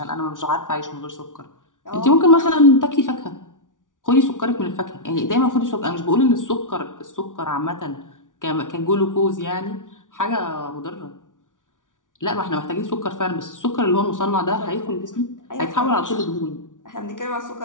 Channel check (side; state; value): right; late; 0.88 ms